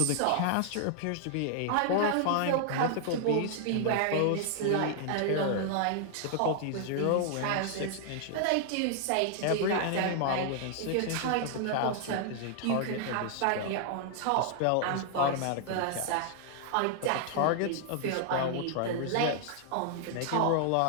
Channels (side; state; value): both; different; correlation 0.00